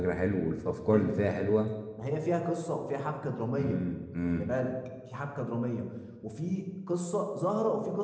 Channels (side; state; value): both; identical; correlation 1.00